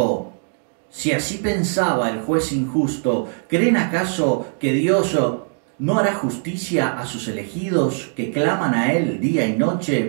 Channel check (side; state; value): left; silent; 56 dB below the other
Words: «Si así pensaba el juez injusto, ¿creen acaso que Dios no hará justicia a sus elegidos que claman a Él día y